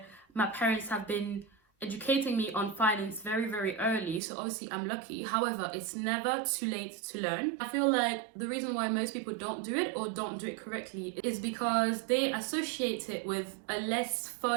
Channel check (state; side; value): drops out; left; at 4.2 s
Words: my parents have been educating me on finance very early, so obviously I'm lucky. However, it's never too late to learn. I feel like the reason why most people don't do it or don't do it correctly is because they associate it with a less